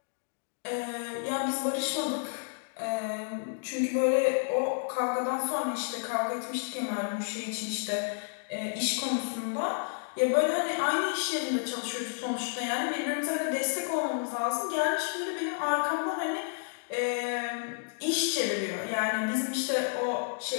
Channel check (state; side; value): silent; right; digital silence